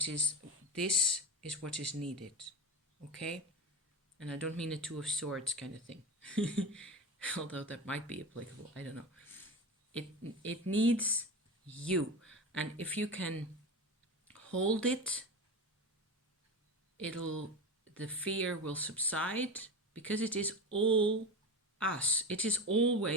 is what is needed. Okay? And I don't mean a two of swords kind of thing. Although that might be applicable. I don't know. It needs you. And if you can hold it, the fear will subside, because it is all us. It is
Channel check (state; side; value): normal; both; correlation 0.25